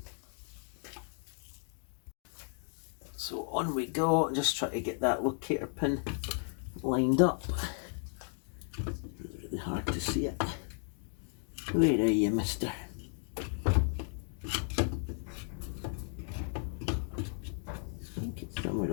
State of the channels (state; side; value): silent; right; 55 dB below the other